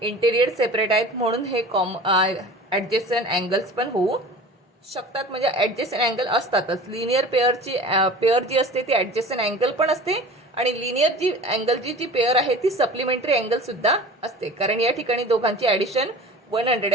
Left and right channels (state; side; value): normal; both; correlation 0.39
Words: इंटेरियर सेपरेट आहेत, म्हणून हे ॲडजेसंट अँगल्स पण होऊ शकतात. म्हणजे ॲडजेसंट अँगल असतातच. लिनियर पेअर जी असते ती ॲडजेसंट अँगल पण असते आणि लिनियर जी अँगल जी पेअर आहे ती सप्लिमेंटरी अँगल सुद्धा असते, कारण या ठिकाणी दोघांची ॲडिशन